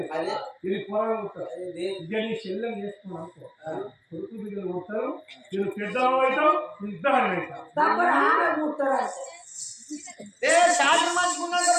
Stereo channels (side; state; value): both; identical; correlation 1.00